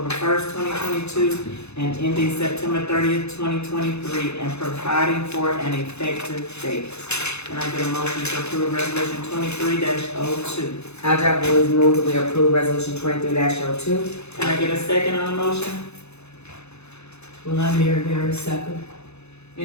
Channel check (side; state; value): right; late; 0.81 ms